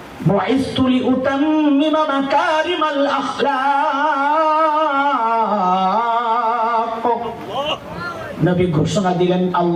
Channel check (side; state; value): both; identical; correlation 1.00